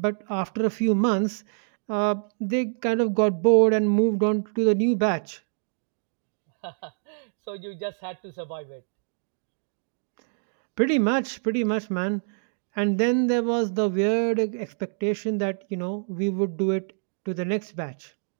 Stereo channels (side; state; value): left; silent; digital silence